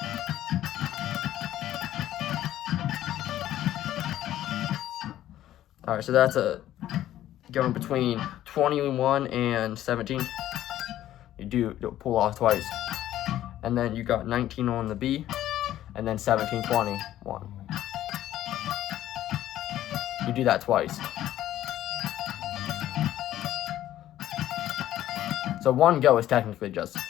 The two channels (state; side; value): quieter; right; 12.9 dB